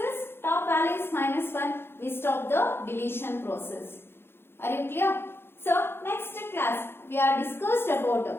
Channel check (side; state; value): right; late; 0.11 ms